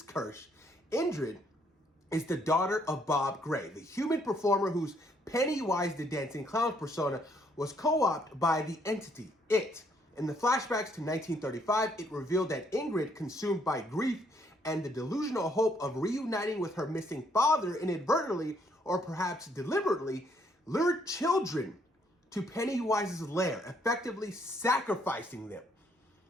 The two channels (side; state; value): both; normal; correlation 0.69